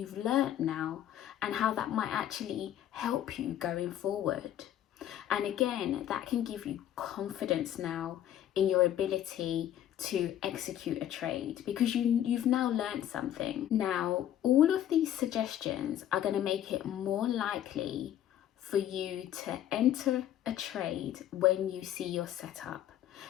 learned now and how that might actually help you going forward. And again, that can give you confidence now in your ability to execute a trade because you've now learned something. Now, all of these suggestions are going to make it more likely for you to enter a trade when you see your setup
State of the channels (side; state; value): right; quieter; 11.3 dB